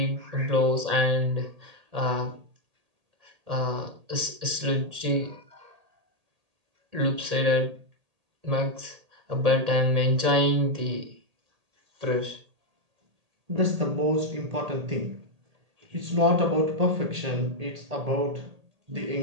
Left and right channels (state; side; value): late; left; 1.8 ms